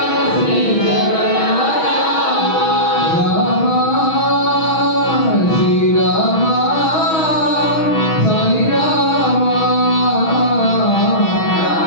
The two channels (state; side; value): late; right; 6.2 ms